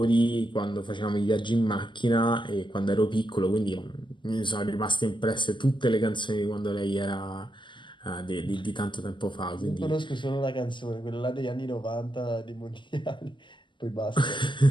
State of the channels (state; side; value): late; right; 0.23 ms